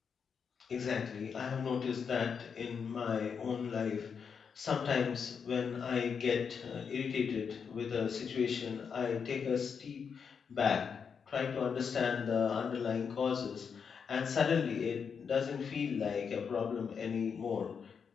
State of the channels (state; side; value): quieter; right; 6.4 dB